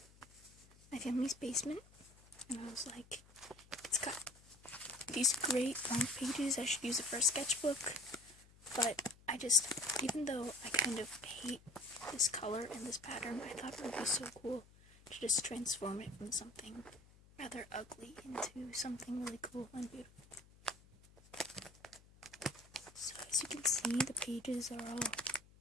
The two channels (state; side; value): noise; left; hum, 24 dB below the sound